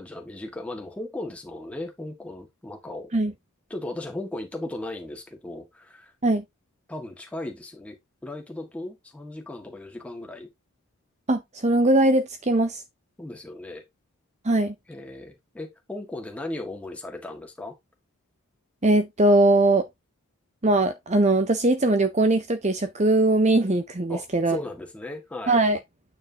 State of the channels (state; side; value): normal; both; correlation 0.48